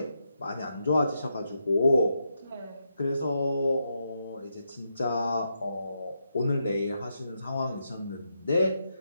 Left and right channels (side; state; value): both; inverted; correlation -0.82